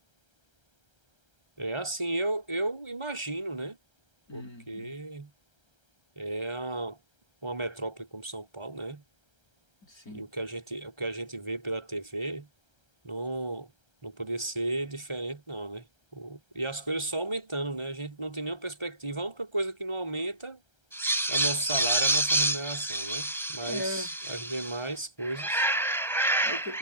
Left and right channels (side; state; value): right; late; 1.3 ms